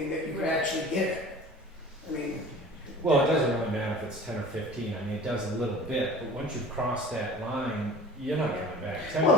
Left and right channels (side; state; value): both; normal; correlation 0.42